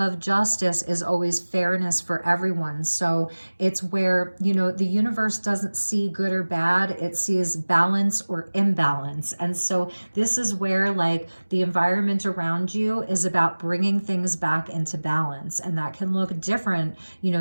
justice is always fairness for everyone. So it's where, the universe doesn't see good or bad, it sees balance or imbalance. And so this is where the environment around you is about bringing things back into balance. And that can look different,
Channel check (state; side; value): inverted; both; correlation -1.00